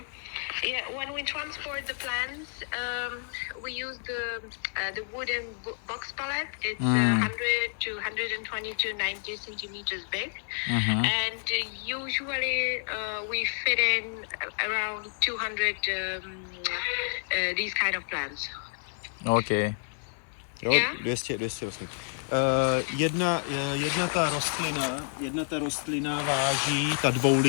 Yeah, when we transport the plants, we use the wooden box pallet. It's 100 to 120 to 90 centimeters big, and usually we fit in around 200 these kind of plants. Okay. Jo, Yeah? 200 vlastně. Jedna ta rostlina váží, ta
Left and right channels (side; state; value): right; silent; digital silence